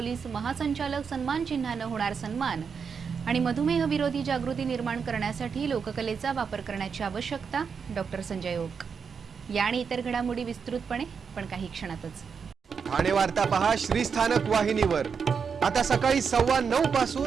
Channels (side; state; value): left; quieter; 6.2 dB